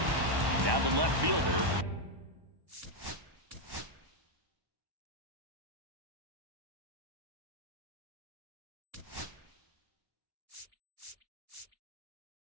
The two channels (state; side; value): late; left; 1.1 ms